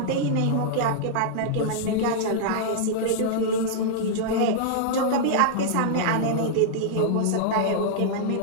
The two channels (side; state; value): both; different; correlation -0.02